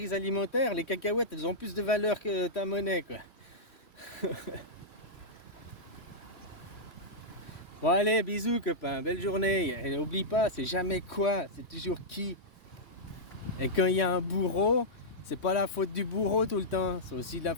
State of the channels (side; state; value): right; late; 3.1 ms